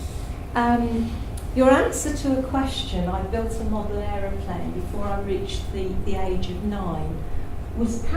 your answer to a question, I built a model aeroplane before I reached the age of 9, was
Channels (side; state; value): both; identical; correlation 1.00